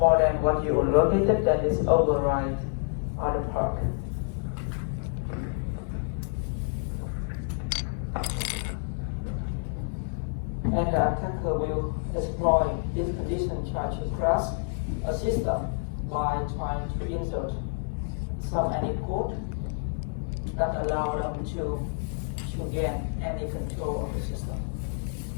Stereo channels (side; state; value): right; silent; 59 dB below the other